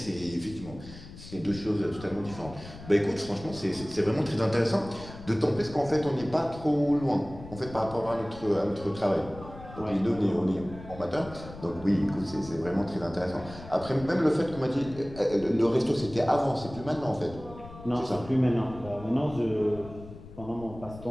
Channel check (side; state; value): left; noise; rumble, 15 dB below the sound